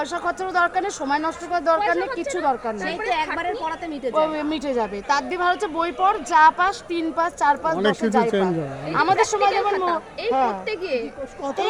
খরচারও দরকার নেই, সময় নষ্ট করার দরকার নেই, কিছু দরকার নেই, সেই তো একবারের পড়াতে মিটে যাবে। মিটে যাবে। তার দিয়ে ভালো হচ্ছে বই পড়, যা পাস 3 পাস 4 পাস অনেক 10 কিছু যাই চেঞ্জ পাস। হয়। আমাদের সময় যেমন এই পড়তে গিয়ে কত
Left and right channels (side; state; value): both; identical; correlation 1.00